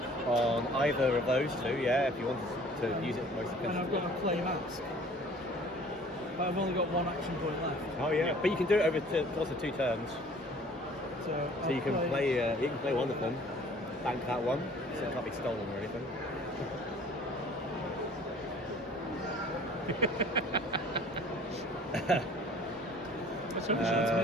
On either of those 2, yeah, if you wanted to use it most And I've efficiently. got to play mask. But I've only got 1 action point left. Oh yeah, but you can do it over course of 2 turns. So So you can play one of them, bank that one, so it can't be stolen or anything. That's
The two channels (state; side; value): normal; both; correlation 0.51